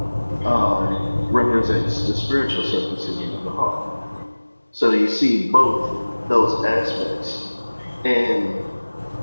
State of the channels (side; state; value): both; inverted; correlation -1.00